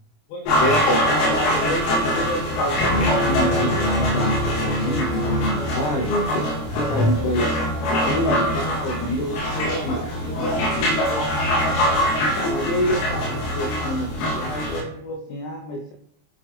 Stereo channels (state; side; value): late; right; 27 ms